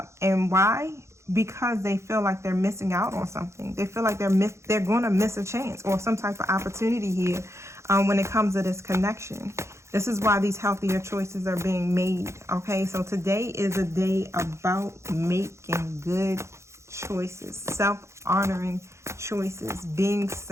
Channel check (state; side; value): late; left; 0.14 ms